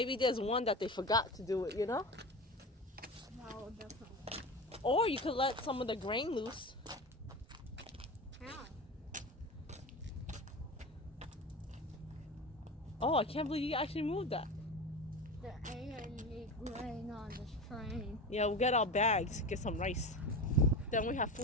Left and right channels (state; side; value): normal; both; correlation 0.28